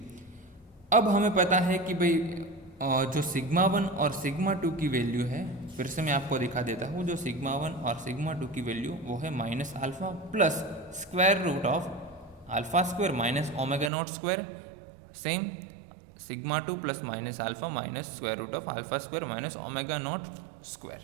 अब हमें पता है कि भाई जो सिग्मा 1 और सिग्मा 2 की वैल्यू है, फिर से मैं आपको दिखा देता हूँ, जो सिग्मा 1 और सिग्मा 2 की वैल्यू वो है minus alpha plus square root of alpha square minus omega not square. Same sigma 2 plus minus alpha minus square root of alpha square minus omega not square.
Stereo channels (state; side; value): drops out; left; at 13.9 s